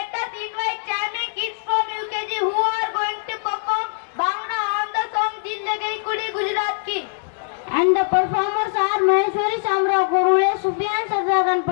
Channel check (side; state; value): right; silent; digital silence